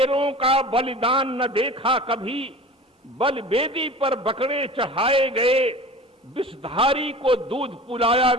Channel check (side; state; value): both; normal; correlation 0.38